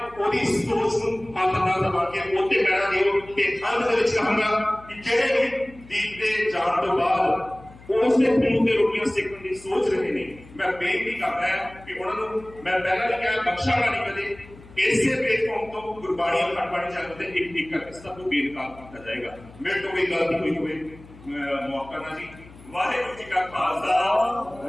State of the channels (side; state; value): left; noise; hum, 21 dB below the sound